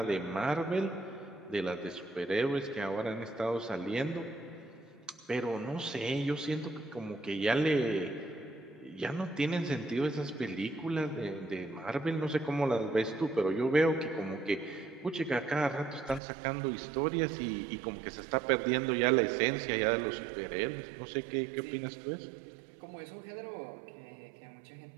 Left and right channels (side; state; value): left; drops out; at 16.2 s